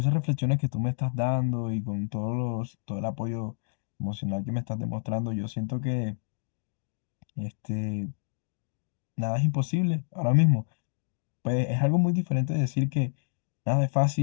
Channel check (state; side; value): silent; right; digital silence